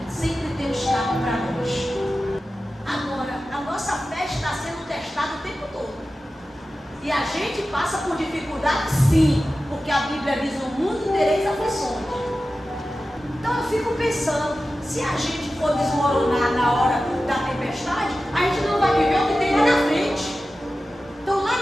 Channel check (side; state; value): both; normal; correlation 0.94